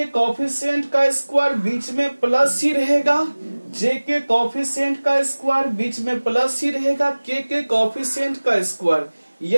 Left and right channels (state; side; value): inverted; both; correlation -1.00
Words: कॉफिशिएंट का स्क्वायर बीच में प्लस ही रहेगा, जे के कॉफिशिएंट का स्क्वायर बीच में प्लस ही रहेगा, के कॉफिशिएंट का स्क्वायर,